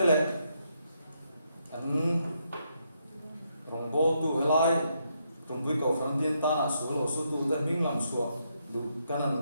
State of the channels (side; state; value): both; inverted; correlation -0.78